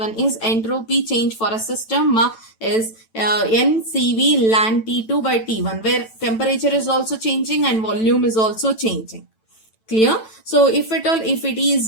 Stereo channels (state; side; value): late; right; 9.0 ms